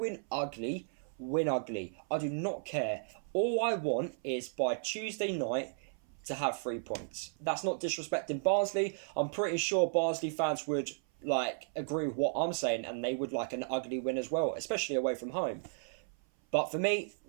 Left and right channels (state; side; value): silent; left; 55 dB below the other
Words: ugly, win ugly. I do not care. All I want is by Tuesday night to have 3 points. That's not disrespecting Barnsley. I'm pretty sure Barnsley fans would agree with what I'm saying, and they would like an ugly win as well, especially away from home. But for me,